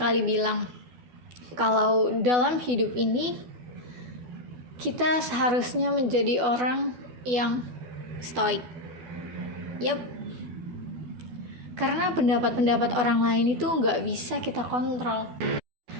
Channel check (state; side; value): late; left; 12 ms